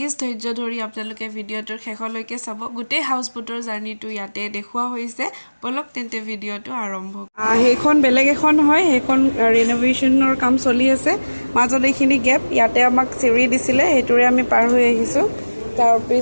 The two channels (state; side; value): inverted; both; correlation -1.00